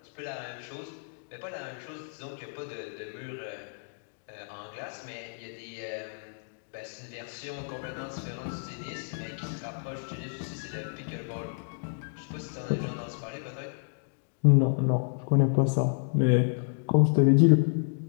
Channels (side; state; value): right; silent; digital silence